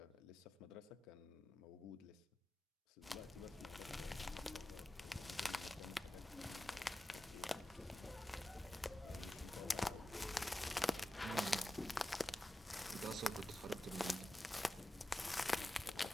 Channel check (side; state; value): both; normal; correlation 0.94